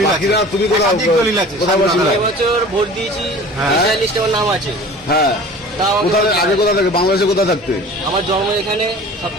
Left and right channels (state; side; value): normal; both; correlation 0.42